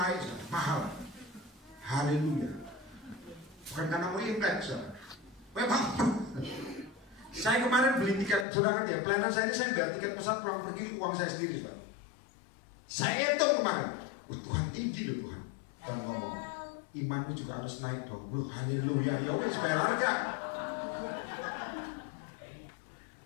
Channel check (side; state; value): right; drops out; at 8.5 s